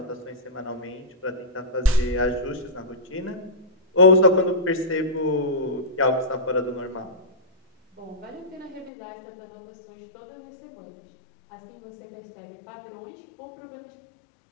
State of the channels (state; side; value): drops out; right; at 8.9 s